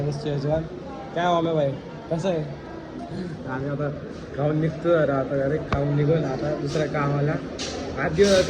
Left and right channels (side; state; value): both; identical; correlation 1.00